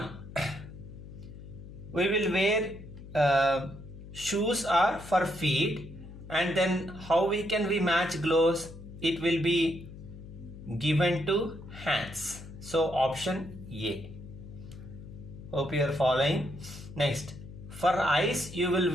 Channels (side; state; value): left; noise; hum, 14 dB below the sound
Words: We will wear shoes are for feet, and then how we match gloves? It will be given to hands. So option A. Hope you are following. Next, for eyes you will